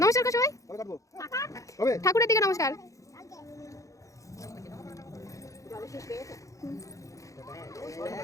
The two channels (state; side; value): late; right; 0.16 ms